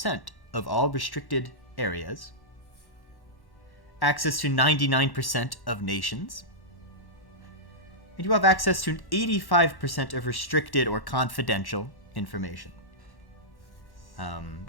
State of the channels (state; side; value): late; right; 1.1 ms